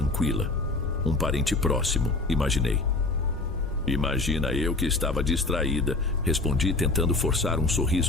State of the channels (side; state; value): right; quieter; 3.1 dB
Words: Um parente próximo, imaginei. Imagina eu que estava distraída, respondi tentando forçar um